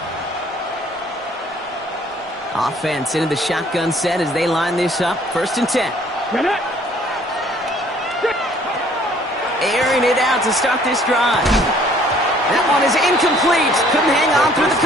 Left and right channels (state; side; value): normal; both; correlation 0.58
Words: line. Offense into the shotgun set as they line this up. First and 10. Airing it out to start this drive. That one is incomplete. Couldn't hang on through the